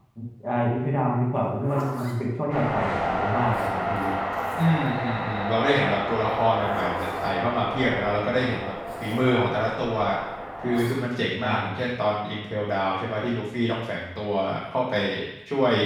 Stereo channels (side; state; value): both; identical; correlation 1.00